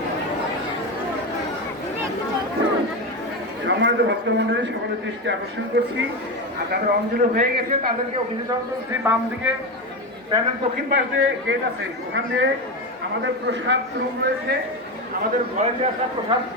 সম্মানিত ভক্তমন্ডলী সকলের দৃষ্টি আকর্ষণ করছি আর তাদের অঞ্জলি হয়ে গেছে তাদেরকে অভিযোজন করছি। বাম দিকে প্যানেল দক্ষিণ পাশ দিয়ে গেট আছে, ওখান দিয়ে আমাদের প্রসাদ রুম রয়েছে, আমাদের ভলেন্টিয়াররা প্রসাদ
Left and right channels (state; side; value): normal; both; correlation 0.16